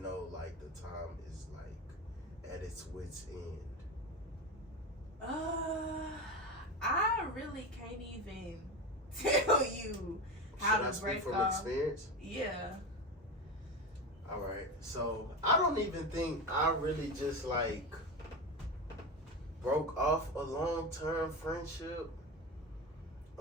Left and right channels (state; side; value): normal; both; correlation 0.22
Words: know like the time is like at its wit's end? I really can't even tell you how Should I to speak break from off. experience? Yeah. All right. So I don't even think I really just like broke off a long-term friendship.